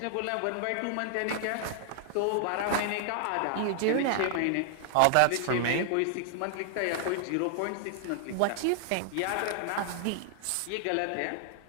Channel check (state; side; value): different; both; correlation -0.01